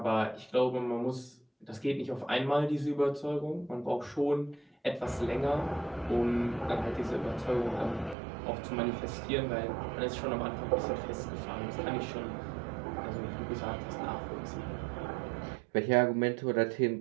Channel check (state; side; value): drops out; left; at 8.2 s